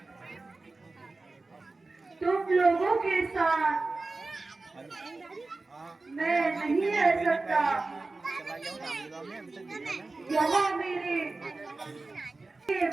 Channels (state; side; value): quieter; left; 3.5 dB